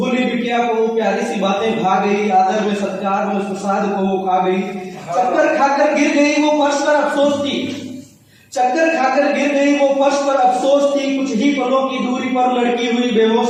बिटिया को वो प्यारी सी बातें भा गई, आदर में सत्कार में उस प्रसाद को वो खा गई। चक्कर खाकर गिर गई वो फर्श पर, अफसोस थी। चक्कर खाकर गिर गई वो फर्श पर, अफसोस थी। कुछ ही पलों की दूरी पर लड़की हुई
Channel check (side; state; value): both; identical; correlation 1.00